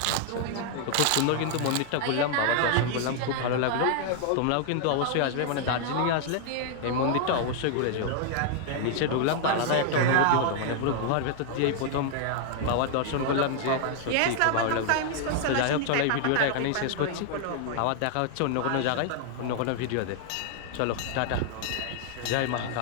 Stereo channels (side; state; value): both; different; correlation -0.01